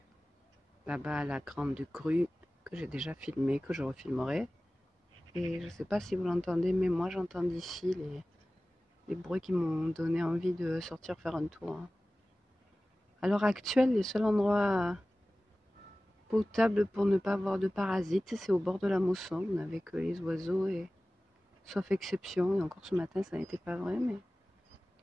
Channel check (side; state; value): both; normal; correlation 0.97